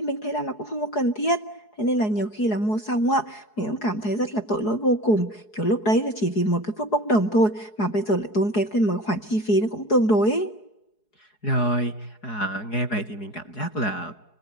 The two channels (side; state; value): right; late; 4.7 ms